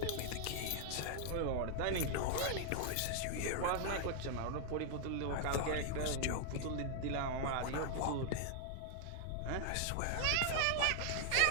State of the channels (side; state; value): both; different; correlation 0.00